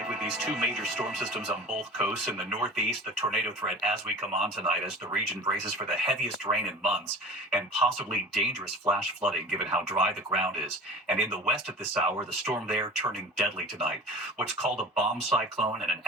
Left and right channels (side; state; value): both; normal; correlation 0.38